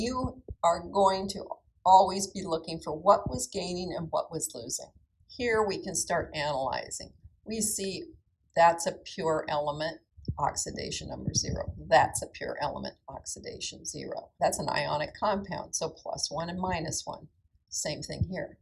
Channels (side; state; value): both; identical; correlation 1.00